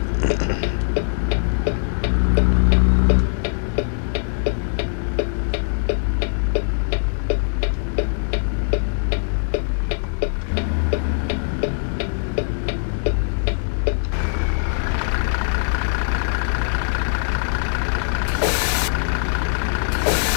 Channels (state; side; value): silent; right; 65 dB below the other